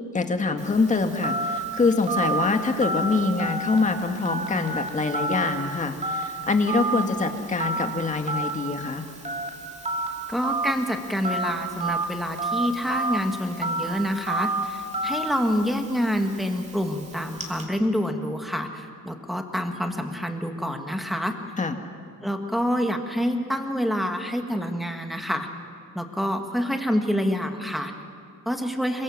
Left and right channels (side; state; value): both; normal; correlation 0.58